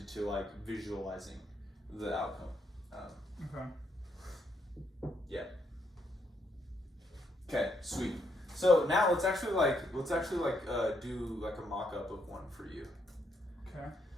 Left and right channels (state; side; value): normal; both; correlation 0.75